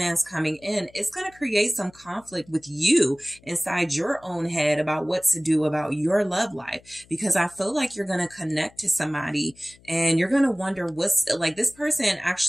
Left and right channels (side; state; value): left; noise; hum, 27 dB below the sound